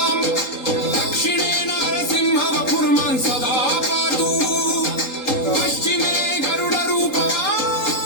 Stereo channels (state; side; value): late; right; 3.8 ms